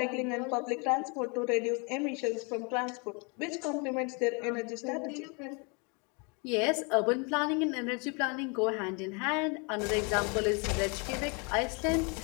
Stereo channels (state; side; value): quieter; right; 32.9 dB